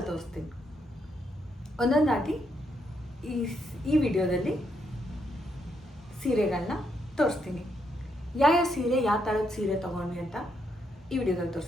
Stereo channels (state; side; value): normal; both; correlation 0.78